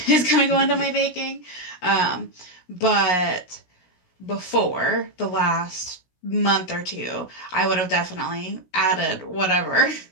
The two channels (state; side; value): late; right; 16 ms